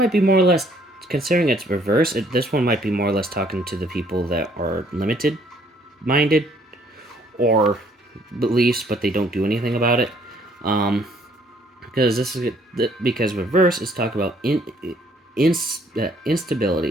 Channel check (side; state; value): both; normal; correlation 0.63